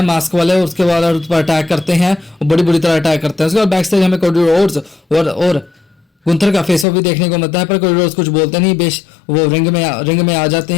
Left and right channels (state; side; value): drops out; right; at 6.9 s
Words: मास्क वाले, उसके बाद उस पर अटैक करते हैं और बड़ी बुरी तरह अटैक करते हैं। उसके बाद बैक स्टेज हमें कोडी रोड्स और गुंथर का फेस ऑफ भी देखने को मिलता है, पर कोडी रोड्स कुछ बोलते नहीं, बेश वो रिंग में आ जाते